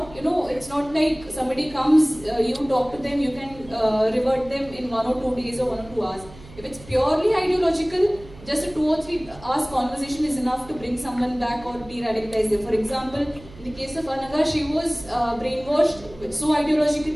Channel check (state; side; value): noise; right; hum, 19 dB below the sound